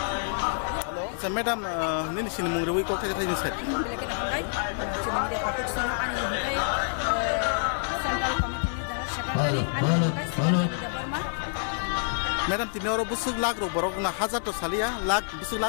sa madam ni sini mung rewi ko kha thang sat bilake na hangai sini media patok sona ani hangai central committee ni general secretary ani hangai sini Burma Madam tini oro busuk lag ro borok na hazar to salia lag busuk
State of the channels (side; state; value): right; silent; 60 dB below the other